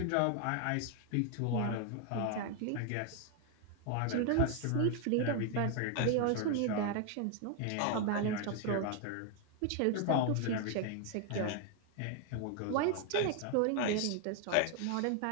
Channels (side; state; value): both; different; correlation 0.00